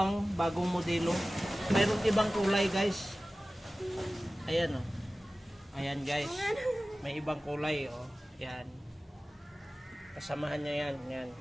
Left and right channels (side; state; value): both; normal; correlation 0.96